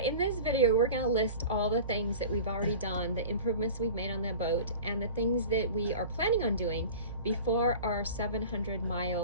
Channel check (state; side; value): inverted; both; correlation -0.37